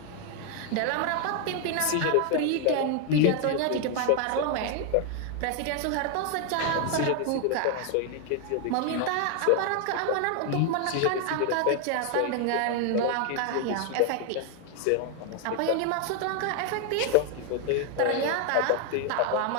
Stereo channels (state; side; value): different; both; correlation 0.00